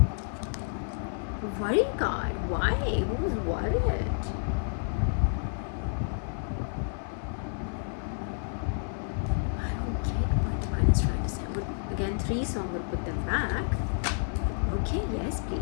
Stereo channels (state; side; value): silent; right; 56 dB below the other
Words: worry card. Why? Who's worried? I don't get what Divine is trying to say. But again, 3, so I'm going to put them back. Okay, yes,